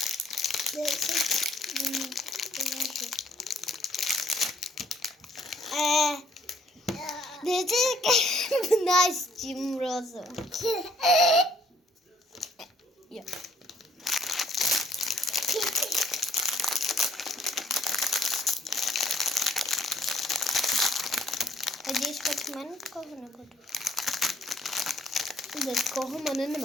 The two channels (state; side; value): normal; both; correlation 0.63